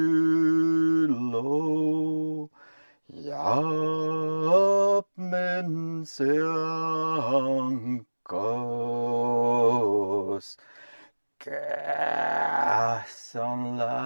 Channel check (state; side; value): inverted; both; correlation -1.00